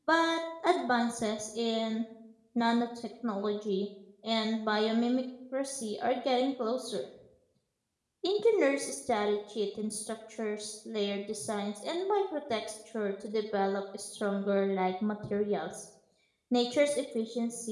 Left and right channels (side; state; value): both; identical; correlation 1.00